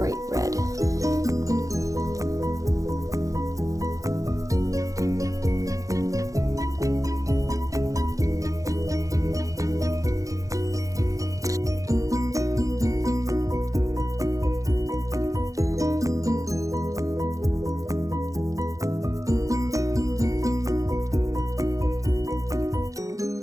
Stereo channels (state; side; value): late; left; 0.16 ms